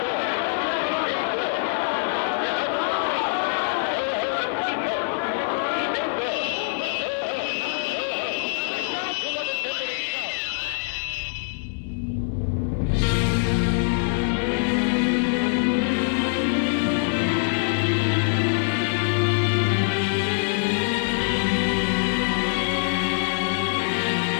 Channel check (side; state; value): right; silent; digital silence